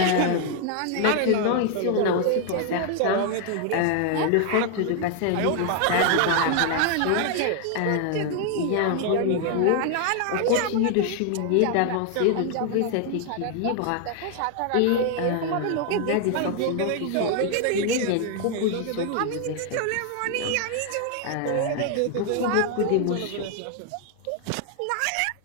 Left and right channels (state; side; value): different; both; correlation 0.00